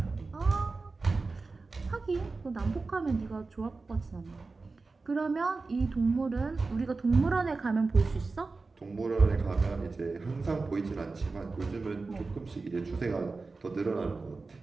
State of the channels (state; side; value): quieter; left; 3.9 dB